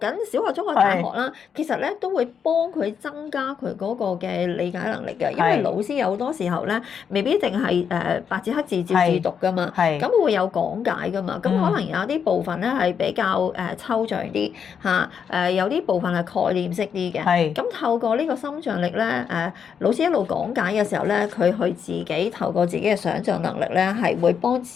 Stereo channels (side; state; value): right; quieter; 7.2 dB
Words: 小學、中學、大學啦，其實咧都會幫佢增加佢嗰個嘅理解能力嘅，因為老師有好多時候咧，未必淨係白紙黑字照字讀噶嘛，咁會有講解噶嘛，咁可能有啲部分咧係比較抽象啲有啲部分係概念式啲嘅，咁透過呢個心象力咧，老師一路講解嘅時候咧，佢去自己透過自己嘅想像能力咧，係會幫